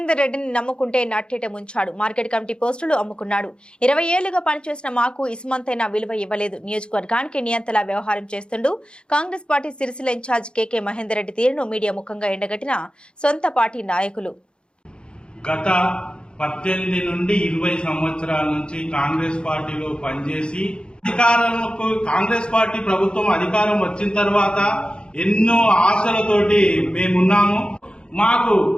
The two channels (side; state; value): right; late; 0.053 ms